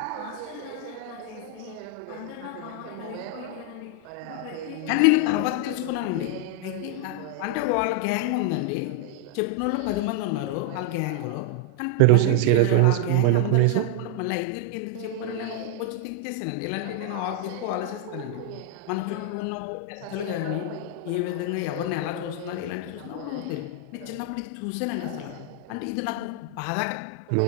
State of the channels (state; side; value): different; both; correlation 0.00